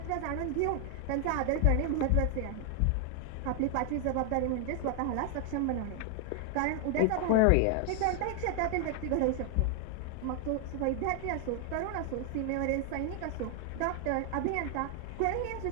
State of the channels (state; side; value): different; both; correlation 0.00